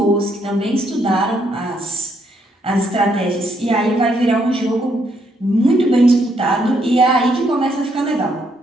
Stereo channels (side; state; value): both; normal; correlation 0.73